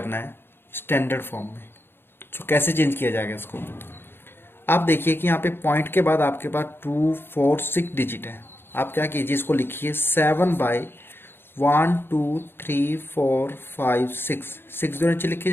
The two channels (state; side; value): late; right; 0.11 ms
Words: है स्टैंडर्ड फॉर्म में. तो कैसे चेंज किया जाएगा इसको? आप देखिए कि यहाँ पे पॉइंट के बाद आपके पास 2, 4, 6 डिजिट है. आप क्या कीजिए, इसको लिखिए 7/1 2 3 4 5 6. 6 जो नीचे लिखे